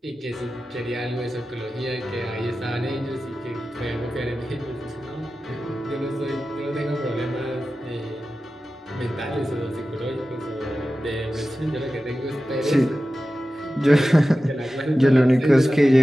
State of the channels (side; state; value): both; normal; correlation 0.94